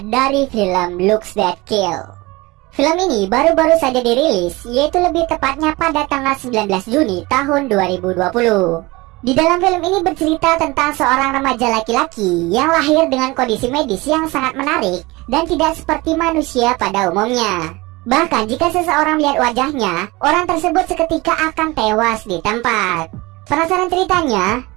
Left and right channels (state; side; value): quieter; left; 22.4 dB